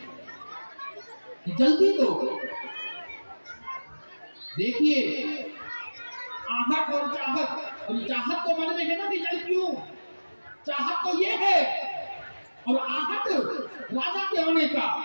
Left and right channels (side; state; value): both; inverted; correlation -1.00